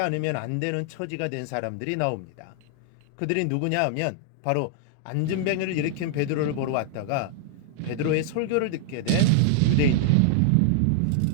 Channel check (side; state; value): both; different; correlation 0.00